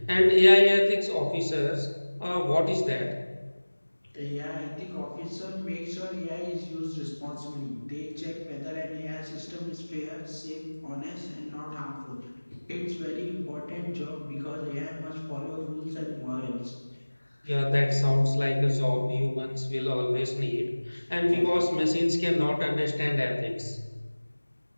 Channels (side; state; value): both; inverted; correlation -1.00